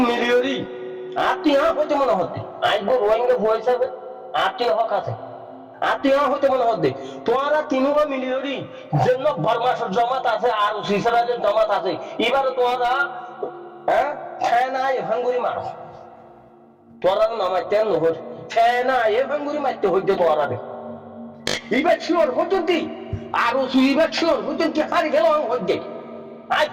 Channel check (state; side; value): identical; both; correlation 1.00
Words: মিলিয়রি আর তুই হইতে মনে হতে আইব রোহিঙ্গা ভয় হিসাবে আর তুই হক আছে আর তুই হইতে মনে হতে তোরা তিনু মিলিয়রি জন্য বর্মাসের জমাত আছে আর সিসারাজের জমাত আছে এবার তোরা হ্যাঁ ফেনা ভাঙ্গুরি মারো তোরা নামাইতে নহর ফেনা ভাঙ্গুরি মারতে হইতে তোরা রে এবার শিওর হতো দি আরো সুইবার শিওর হতো কি হারি গেল হইতে আই